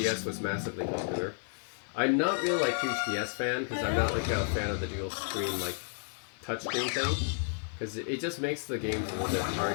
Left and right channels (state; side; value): silent; right; 57 dB below the other